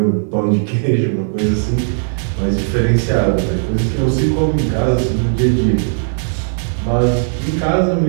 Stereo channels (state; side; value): silent; left; 59 dB below the other